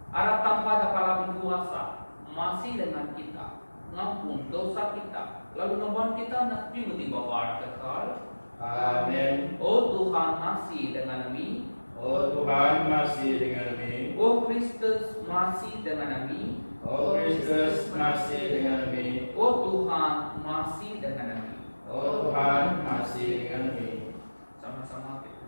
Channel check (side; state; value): both; inverted; correlation -1.00